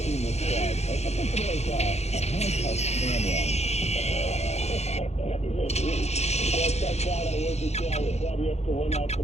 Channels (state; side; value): late; right; 0.31 ms